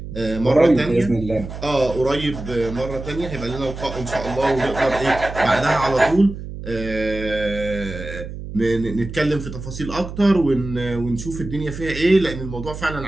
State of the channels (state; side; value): noise; right; hum, 10 dB below the sound